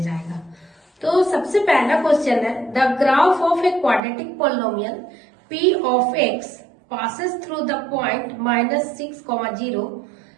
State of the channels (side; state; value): left; drops out; at 4.0 s